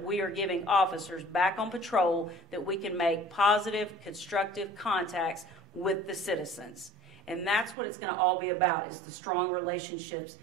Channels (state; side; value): drops out; left; at 7.8 s